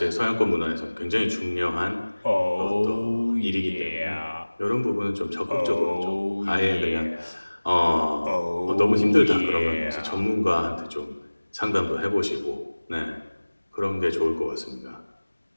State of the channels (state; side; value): inverted; both; correlation -1.00